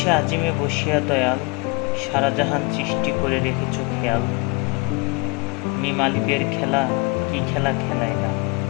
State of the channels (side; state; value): right; quieter; 29.1 dB